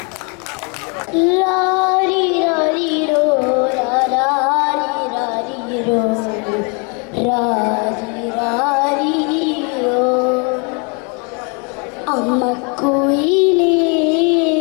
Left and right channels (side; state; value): right; quieter; 34.3 dB